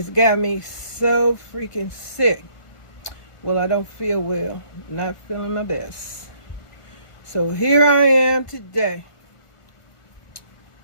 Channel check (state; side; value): late; right; 1.4 ms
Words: got me so freaking sick. Well, I don't feel well, not feeling my best. So here I am today